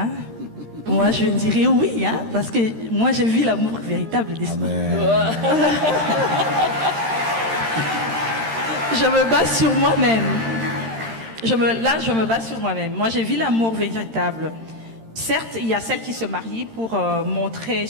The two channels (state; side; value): late; left; 13 ms